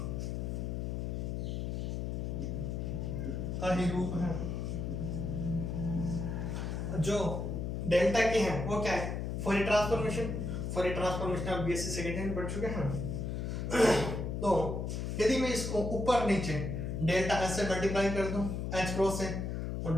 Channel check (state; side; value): noise; left; hum, 2 dB below the sound